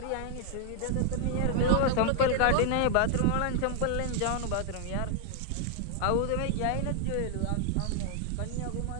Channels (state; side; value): different; both; correlation 0.00